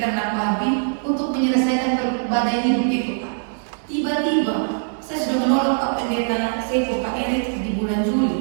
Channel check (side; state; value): left; silent; digital silence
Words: babi untuk menyelesaikan badai hidup itu, Pak. Tiba-tiba saya sudah menolak Pak Pendeta Seko, Pak Erik di bulan